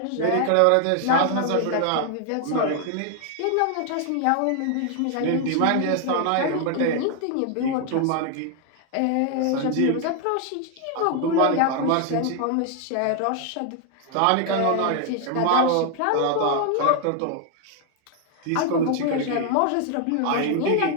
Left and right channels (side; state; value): both; different; correlation 0.00